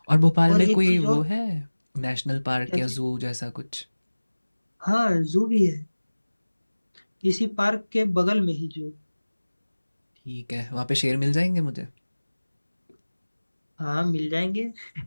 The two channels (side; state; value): both; inverted; correlation -1.00